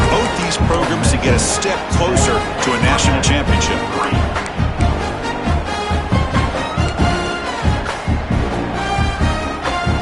both these programs to get a step closer to a national championship.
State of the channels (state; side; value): identical; both; correlation 1.00